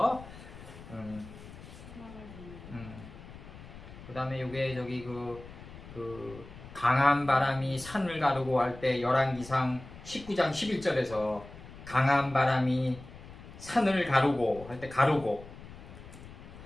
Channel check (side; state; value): left; noise; rumble, 16 dB below the sound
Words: 그 다음에 요게 저기 그 강한 바람이 산을 가르고 할 때 열왕기상 19장 11절에서 강한 바람이 산을 가르고 할 때 가르고